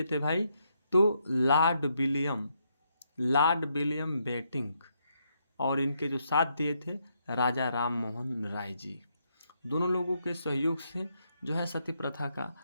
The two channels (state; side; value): inverted; both; correlation -0.77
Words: थे भाई? तो लॉर्ड विलियम बेटिंक और इनके जो साथ दिए थे राजा राम मोहन राय जी। दोनों लोगों के सहयोग से जो है सती प्रथा का